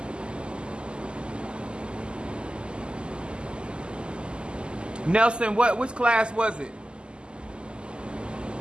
Nelson, which class was it?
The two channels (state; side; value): late; left; 0.050 ms